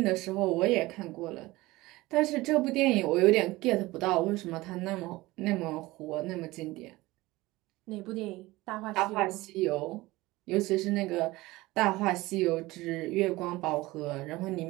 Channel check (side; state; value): left; quieter; 19.7 dB